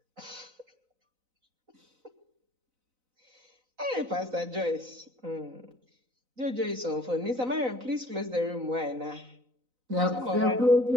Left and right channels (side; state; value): left; late; 4.0 ms